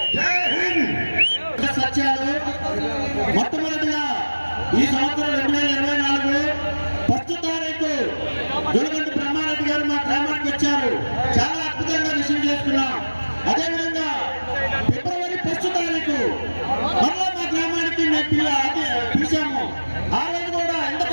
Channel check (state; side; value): inverted; both; correlation -1.00